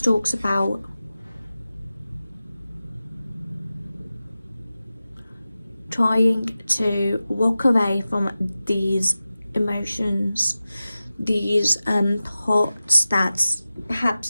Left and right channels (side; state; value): both; inverted; correlation -0.95